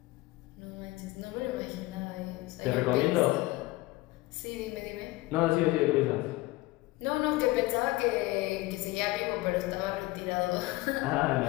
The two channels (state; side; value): quieter; right; 19.6 dB